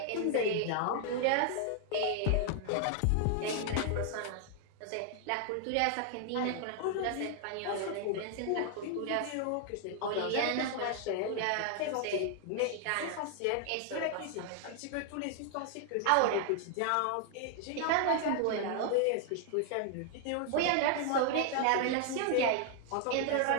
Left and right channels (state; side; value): different; both; correlation 0.00